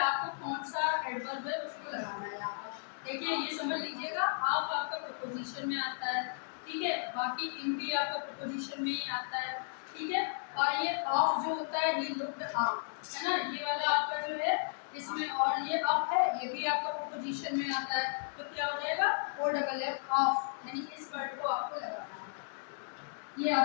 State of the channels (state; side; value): silent; right; digital silence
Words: कौन सा एडवर्ब है उसको लगाना है यहाँ पर। देखिए ये समझ लीजिएगा, आप आपका प्रपोजिशन में आता है, ठीक है, बाकी इन भी आपका प्रपोजिशन में ही आता है, ठीक है। और ये ऑफ जो होता है ही लुक्ड अप, है ना, ये वाला आपका जो है इसमें, और ये अप है ये भी आपका प्रपोजिशन में आता है। तो क्या हो जाएगा, ओ डबल एफ ऑफ, यानी इस वर्ड को आपको लगाना है, ये